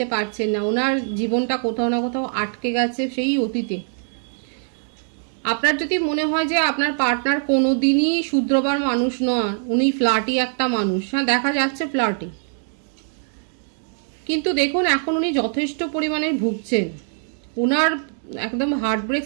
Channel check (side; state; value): left; silent; 60 dB below the other